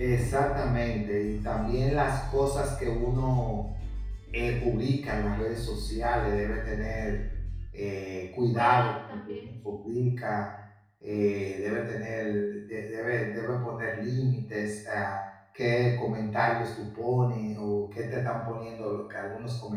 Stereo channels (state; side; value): identical; both; correlation 1.00